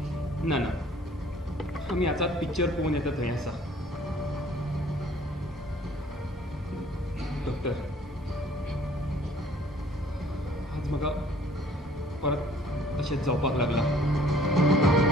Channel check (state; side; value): normal; both; correlation 0.56